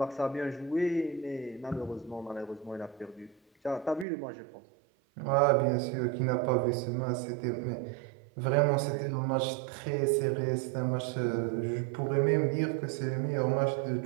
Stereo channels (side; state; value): left; drops out; at 4.0 s